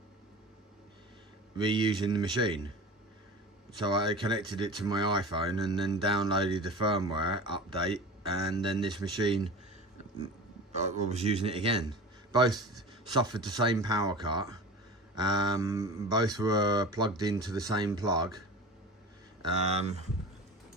reusing the machine. So I connected it to my iPhone and then downloaded the firmware update, and then this machine, I was using it again. Both suffered the same power cut. Both were plugged into the same plug.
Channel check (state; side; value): normal; both; correlation 0.35